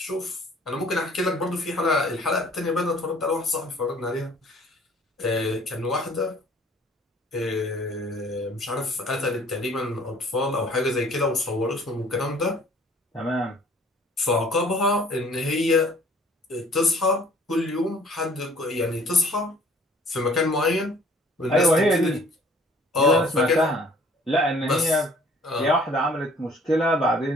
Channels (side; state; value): both; normal; correlation 0.55